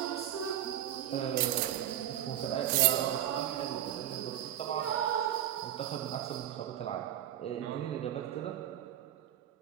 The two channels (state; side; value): quieter; left; 11.5 dB